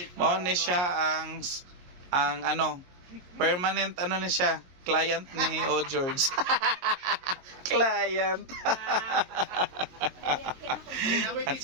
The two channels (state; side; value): late; left; 22 ms